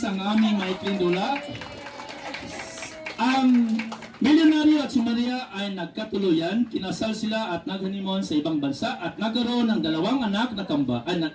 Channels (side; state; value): both; identical; correlation 1.00